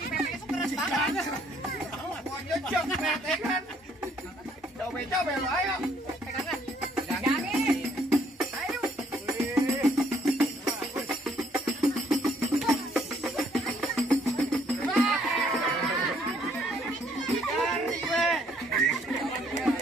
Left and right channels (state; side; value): normal; both; correlation 0.66